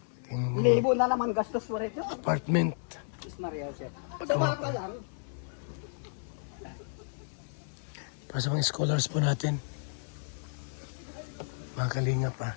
Libo na naman gastos mo rin yun. Apartment. Diyos Maria Jose. Sama ka lang. Para sa mga scholars po natin. Mga kalinga pa.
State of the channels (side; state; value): right; silent; 56 dB below the other